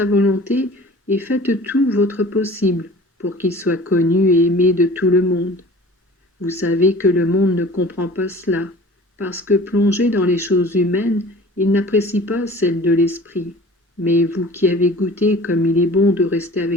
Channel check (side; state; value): both; normal; correlation 0.44